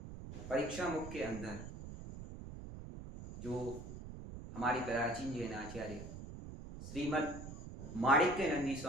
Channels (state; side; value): noise; right; rumble, 10 dB below the sound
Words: परीक्षा मुख के अंदर जो हमारी प्राचीन जैन आचार्य श्रीमद् माणिक्य नंदी